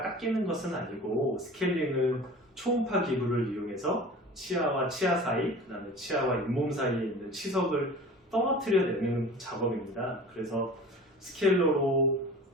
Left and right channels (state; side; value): normal; both; correlation 0.39